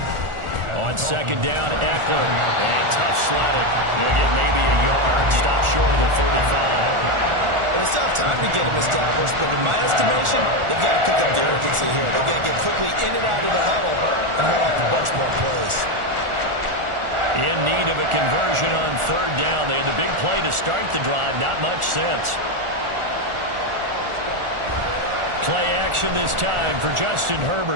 On 2nd down, Eckler. And tough slatted. He'll get maybe a yard. Stop short of the 35. It's tough time to get him established, but in my estimation, they've got to pick up the urgency here. They've got to get quickly in and out of the huddle and run off a bunch more plays. In need of a conversion on 3rd down. They had the big play to start the drive. Not much sense. Play action this time for Justin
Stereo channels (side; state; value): left; late; 1.4 ms